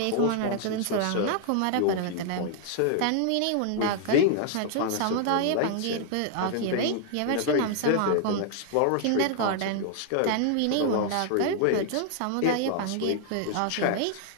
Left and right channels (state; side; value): different; both; correlation 0.00